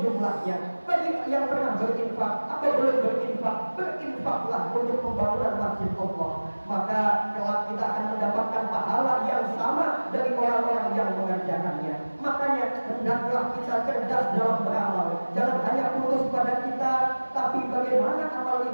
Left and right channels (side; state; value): both; inverted; correlation -1.00